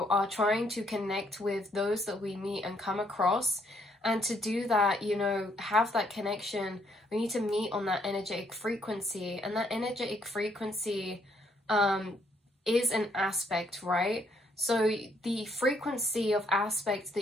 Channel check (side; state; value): both; normal; correlation 0.70